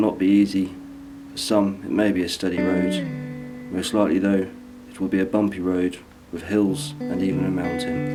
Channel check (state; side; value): identical; both; correlation 1.00